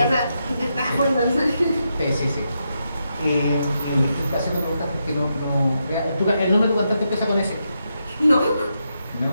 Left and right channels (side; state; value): both; inverted; correlation -0.83